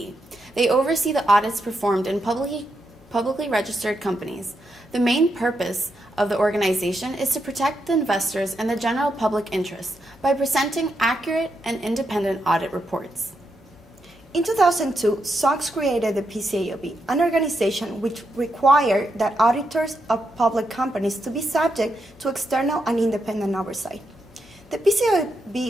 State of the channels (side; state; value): both; normal; correlation 0.83